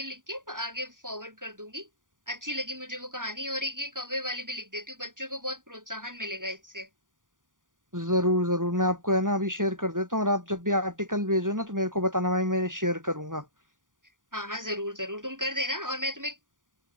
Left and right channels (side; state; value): left; late; 0.88 ms